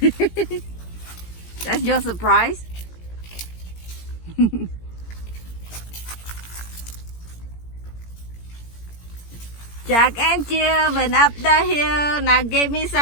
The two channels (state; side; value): late; right; 17 ms